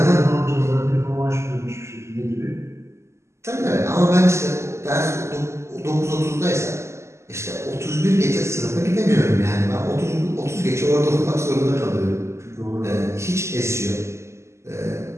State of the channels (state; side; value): late; left; 0.13 ms